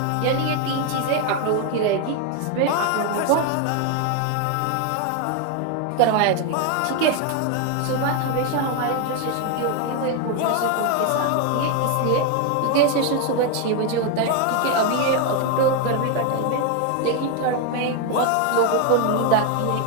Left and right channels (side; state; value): both; different; correlation 0.01